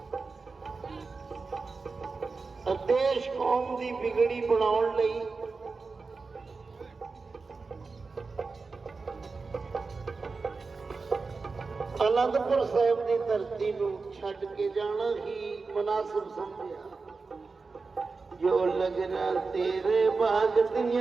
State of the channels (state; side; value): quieter; left; 4.3 dB